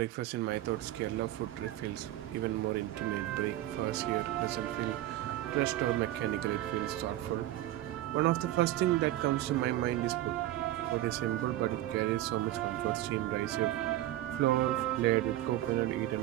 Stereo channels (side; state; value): left; quieter; 14.6 dB